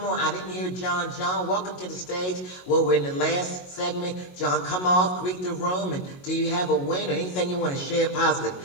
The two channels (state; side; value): late; right; 22 ms